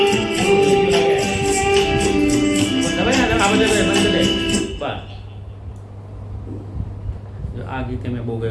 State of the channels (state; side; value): identical; both; correlation 1.00